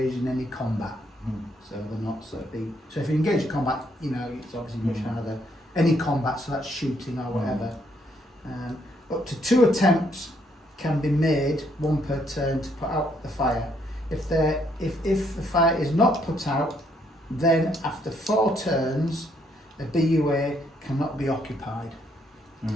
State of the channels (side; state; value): both; normal; correlation 0.71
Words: in any combat. So they're not so if you engage in combat, you know, it's obviously much harder. Any combat, so that's shooting or whatever. Up to 2 attempts can be made, 1 per turn, to put out the fire. If the fire is not put out, then after 4 turns, a BUA cannot be occupied.